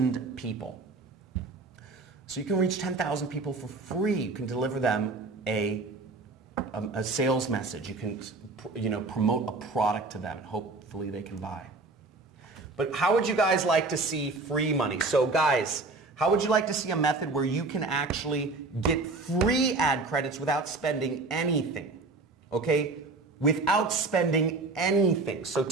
people. So you can reach 10,000 people for free. You can deliver them a sales message. You can, promote a product to them, and hopefully they can buy. But how would you guys like to see free money? So guys, how would you like to see a method where you can actually get free ad credits without spending anything? Okay? Without spending anything. So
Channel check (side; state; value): left; quieter; 3.6 dB